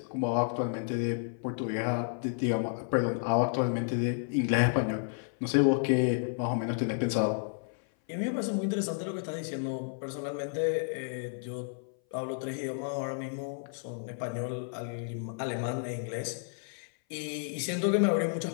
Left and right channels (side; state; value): right; silent; 57 dB below the other